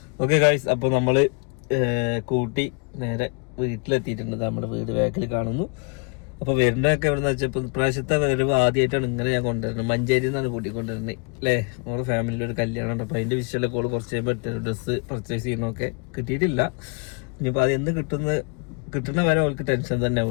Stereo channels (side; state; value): right; quieter; 33.9 dB